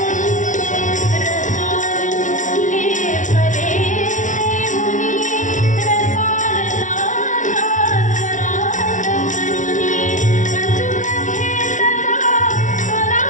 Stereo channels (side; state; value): right; late; 0.37 ms